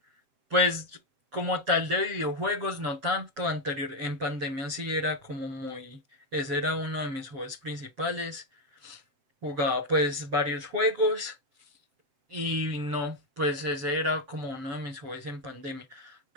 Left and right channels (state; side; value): late; left; 7.6 ms